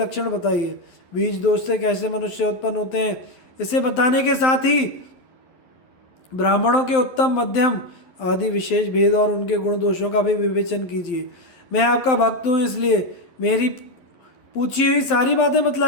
बताइए। बीज दोष से कैसे मनुष्य उत्पन्न होते हैं, इसे बताने के साथ ही ब्राह्मणों के उत्तम, मध्यम आदि विशेष भेद और उनके गुण दोषों का भी विवेचन कीजिए। मैं आपका भक्त हूँ, इसलिए मेरी पूछी हुई सारी बातें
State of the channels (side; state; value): right; late; 12 ms